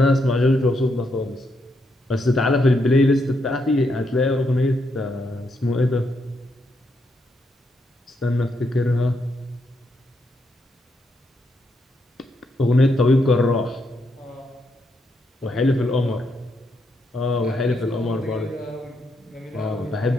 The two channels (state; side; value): normal; both; correlation 0.79